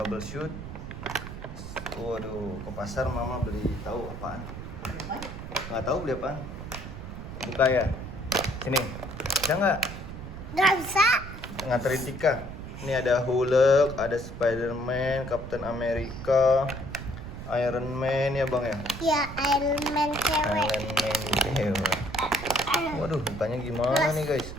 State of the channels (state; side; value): noise; right; rumble, 10 dB below the sound